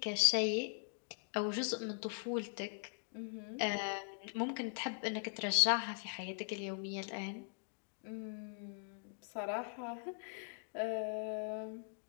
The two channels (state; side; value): silent; right; digital silence